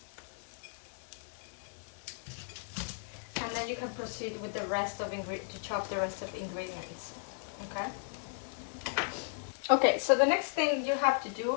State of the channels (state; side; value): silent; right; 54 dB below the other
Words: And then you can proceed with the rest of to chop the rest of the ingredients. Okay. Okay, so the next thing you have to